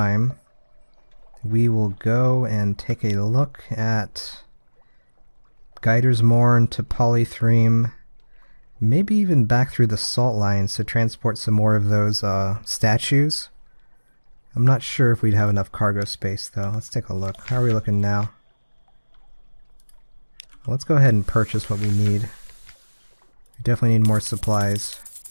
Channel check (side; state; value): both; inverted; correlation -1.00